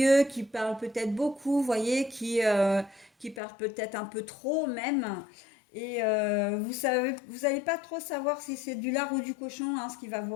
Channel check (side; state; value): right; drops out; at 3.4 s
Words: qui parle peut-être beaucoup, vous voyez, qui parle peut-être un peu trop même. Et vous savez, vous n'allez pas trop savoir si c'est du lard ou du cochon, hein, ce qu'il va vous